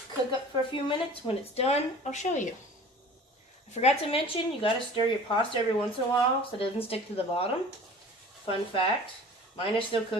cook up for a few minutes. When it's done, I'll show you. I forgot to mention, you got to stir your pasta every once in a while so it doesn't stick to the bottom. Fun fact, mine is still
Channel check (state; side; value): normal; both; correlation 0.44